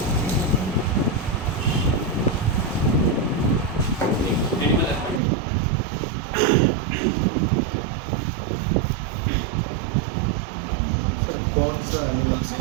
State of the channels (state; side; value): drops out; left; at 5.2 s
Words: एनिमल सर कौन सा एनिमल से